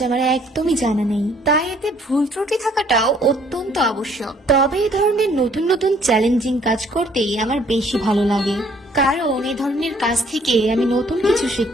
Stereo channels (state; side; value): normal; both; correlation 0.62